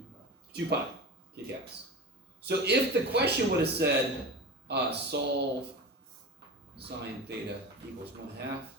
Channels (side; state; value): both; normal; correlation 0.30